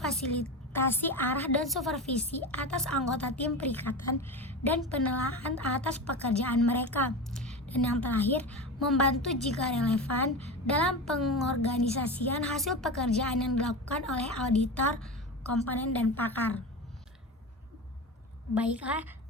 arah dan supervisi atas anggota tim perikatan dan penilaian atas pekerjaan mereka, dan yang terakhir, membantu jika relevan dalam pengorganisasian hasil pekerjaan yang dilakukan oleh auditor, komponen, dan pakar. Baiklah,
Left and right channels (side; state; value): both; normal; correlation 0.25